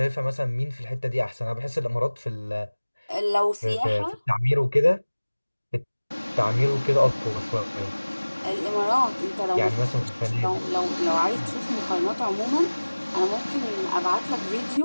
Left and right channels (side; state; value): both; inverted; correlation -1.00